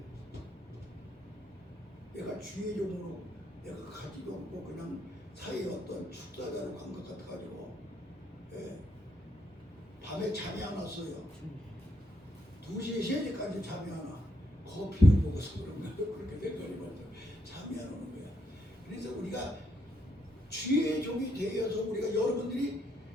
내가 주의 종으로 내가 가지도 않고 그냥 사회의 어떤 축사자로 간 것 같아가지고 밤에 잠이 안 왔어요. 2시, 3시까지 잠이 안 와. 커피를 먹어서 그런가 그렇게 생각이 먼저 잠이 안 오는 거야. 그래서 우리가 주의 종이 되어서 우리가 여러분들이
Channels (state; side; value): normal; both; correlation 0.76